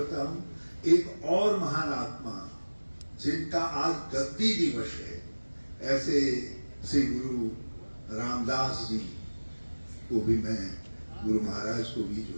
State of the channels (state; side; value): inverted; both; correlation -1.00